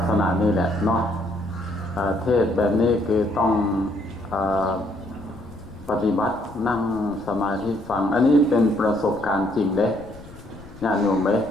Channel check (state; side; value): noise; left; rumble, 19 dB below the sound